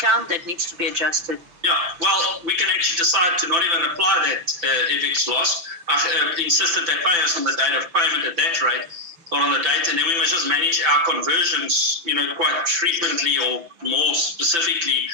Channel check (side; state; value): left; late; 5.9 ms